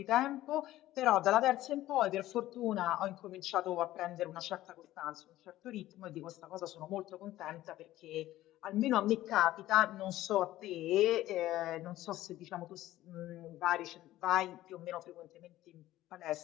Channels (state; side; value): quieter; right; 15.0 dB